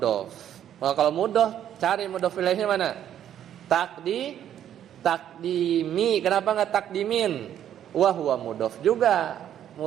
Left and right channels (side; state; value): left; quieter; 10.4 dB